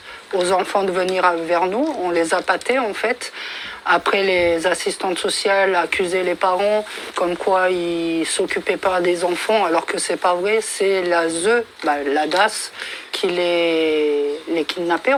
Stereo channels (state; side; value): identical; both; correlation 1.00